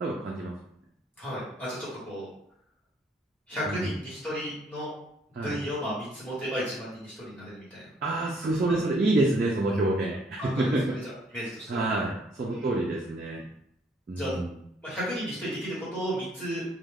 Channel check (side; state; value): both; normal; correlation 0.64